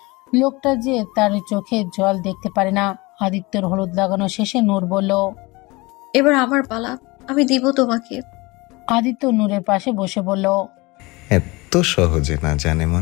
লোকটা যে তার চোখে জল দেখতে পারে না। আদিত্যের হলুদ লাগানো শেষে নূর বলল, এবার আমার পালা, আমি দিব তোমাকে। আদিত্য নূরের পাশে বসে বলল, এত সহজে না জানে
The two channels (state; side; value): quieter; right; 23.8 dB